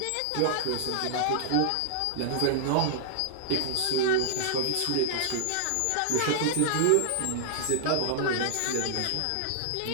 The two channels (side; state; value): both; different; correlation -0.01